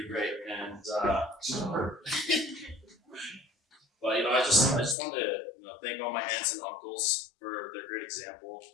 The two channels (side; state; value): right; drops out; at 5.0 s